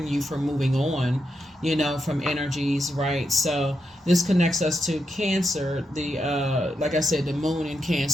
you for moving on, from energies, right? So this connects us to Cancer. The like I said, the Moon in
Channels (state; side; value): normal; both; correlation 0.84